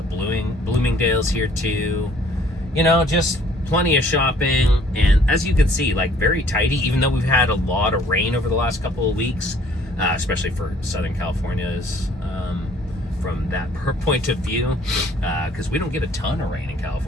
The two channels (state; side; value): normal; both; correlation 0.58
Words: Bloomingdale's here too. You know, just plenty of shopping, and as you can see, like very tidy, even though we've had a lot of rain over the last couple of weeks, especially for Southern California's from that point of view, because we don't get a ton of rain in